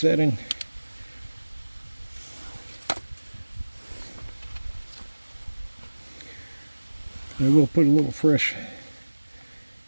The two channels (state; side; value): inverted; both; correlation -1.00